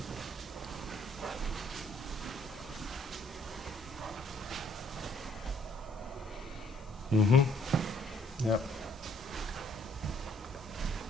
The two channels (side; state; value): both; normal; correlation 0.64